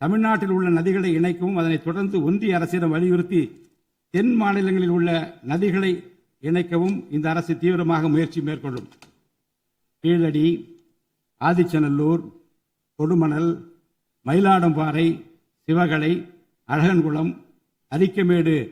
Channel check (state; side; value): identical; both; correlation 1.00